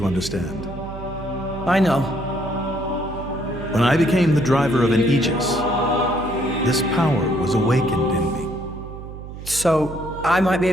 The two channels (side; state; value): right; noise; hum, 12 dB below the sound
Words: understand. I know. When I became the driver of an Aegis, this power was awakened in me. So, I might be